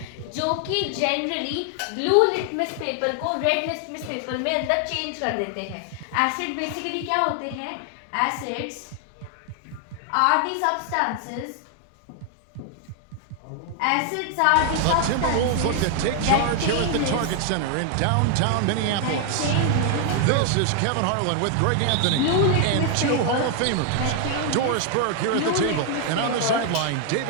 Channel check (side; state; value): both; different; correlation 0.00